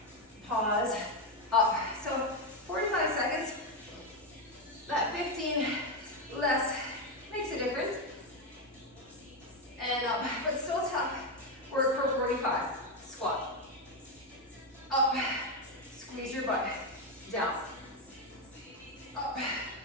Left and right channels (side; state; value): both; normal; correlation 0.07